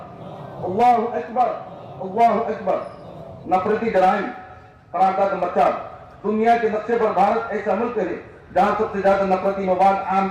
अल्लाहु अकबर, अल्लाहु अकबर। नफरती जराइम। करारदाद नंबर 4, दुनिया के नक्शे पर भारत ऐसा मुल्क है जहाँ सबसे ज्यादा नफरती मवाद आम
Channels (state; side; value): identical; both; correlation 1.00